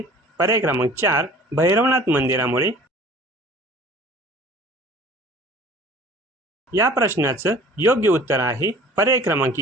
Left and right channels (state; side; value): normal; both; correlation 0.47